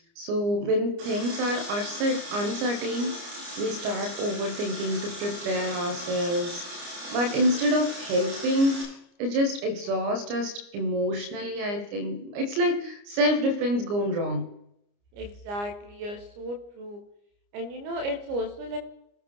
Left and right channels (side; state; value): left; late; 29 ms